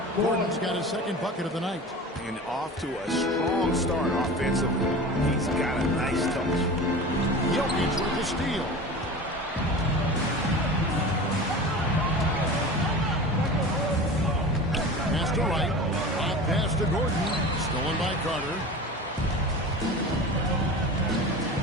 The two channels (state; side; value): normal; both; correlation 0.34